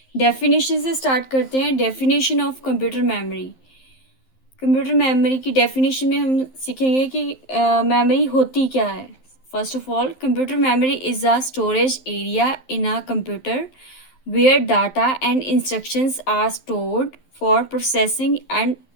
डेफिनेशन से स्टार्ट करते हैं। Definition of computer memory. Computer memory की डेफिनेशन में हम सीखेंगे कि मेमोरी होती क्या है। First of all, computer memory is a storage area in a computer where data and instructions are stored for processing and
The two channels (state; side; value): late; right; 11 ms